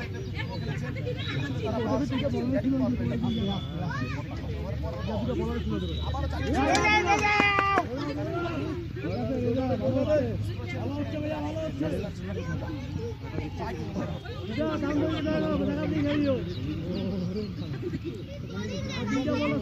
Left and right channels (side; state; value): both; identical; correlation 1.00